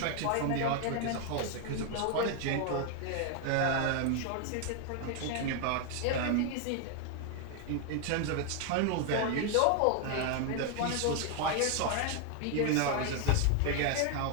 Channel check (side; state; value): both; different; correlation 0.01